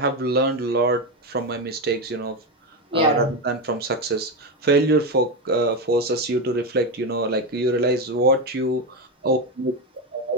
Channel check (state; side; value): normal; both; correlation 0.13